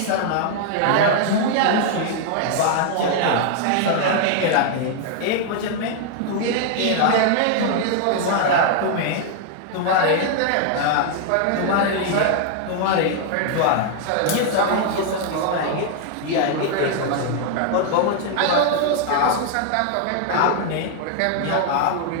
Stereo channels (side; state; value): both; different; correlation 0.00